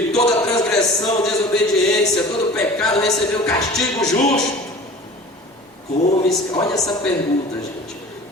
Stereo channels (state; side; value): normal; both; correlation 0.42